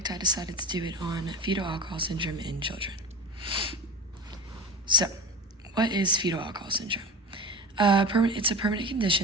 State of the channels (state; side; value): normal; both; correlation 0.28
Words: I decided to do it on fetal alcohol syndrome in children. So, what is fetal alcohol syndrome? It's a permanent